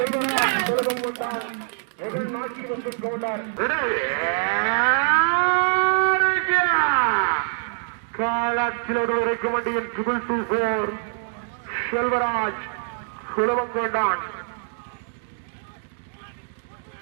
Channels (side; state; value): left; silent; digital silence